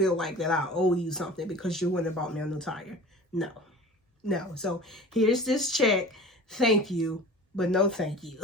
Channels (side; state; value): both; normal; correlation 0.40